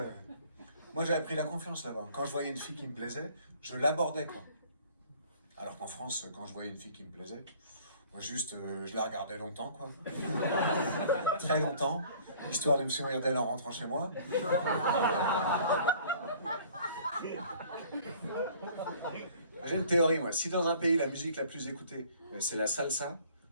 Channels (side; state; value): both; inverted; correlation -0.54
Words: Moi, j'avais pris la confiance là-bas. Quand je voyais une fille qui me plaisait, je l'abordais, quoi. Alors qu'en France, quand je voyais une fille qui me plaisait, moi juste, je la regardais longtemps, quoi. Très longtemps, histoire de me souvenir d'elle en rentrant chez moi. J'ai une théorie, moi. Si dans un pays, la musique la plus écoutée, c'est la salsa,